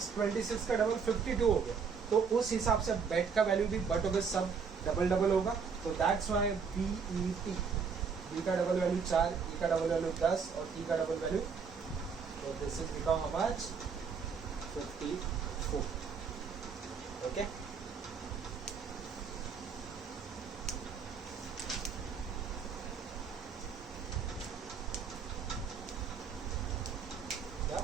का डबल 52 हो गया। तो उस हिसाब से बेट का वैल्यू भी बट होगा, सब डबल डबल होगा। तो दैट्स वाई BET, B का डबल वैल्यू 4, E का डबल वैल्यू 10 और T का डबल वैल्यू, तो this is become how much 54। Okay,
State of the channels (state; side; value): quieter; left; 5.9 dB